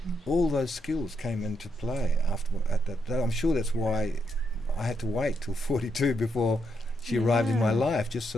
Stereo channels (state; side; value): normal; both; correlation 0.79